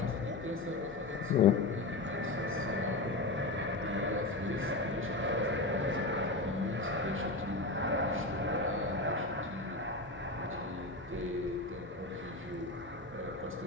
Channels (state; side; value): quieter; right; 3.1 dB